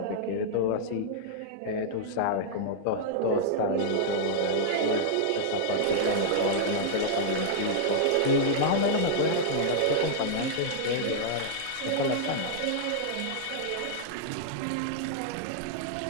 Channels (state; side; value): different; both; correlation -0.02